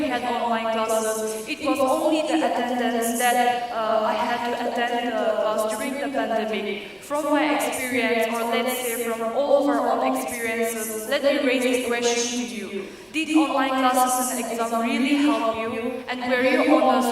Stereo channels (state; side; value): identical; both; correlation 1.00